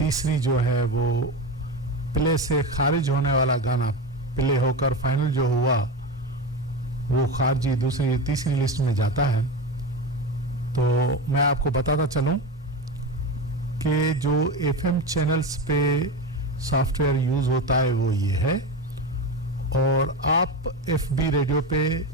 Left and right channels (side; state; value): both; normal; correlation 0.20